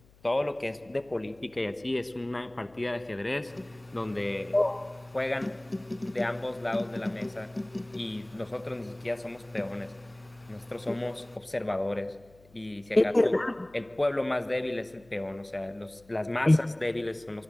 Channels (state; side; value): noise; left; hum, 27 dB below the sound